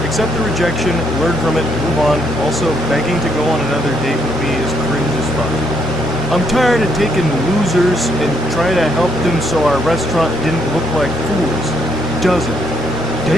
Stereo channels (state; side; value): normal; both; correlation 0.72